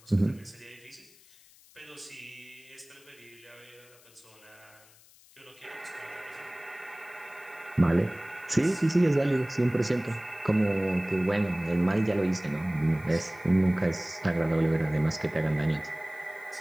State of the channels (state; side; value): noise; left; hiss, 26 dB below the sound